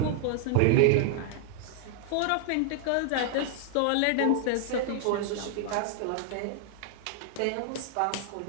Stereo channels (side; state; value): both; different; correlation 0.00